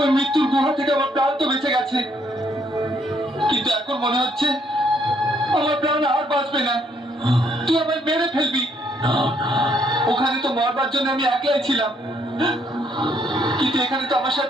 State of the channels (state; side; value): normal; both; correlation 0.69